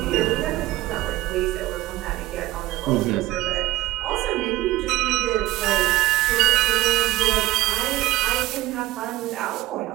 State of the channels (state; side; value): quieter; left; 17.3 dB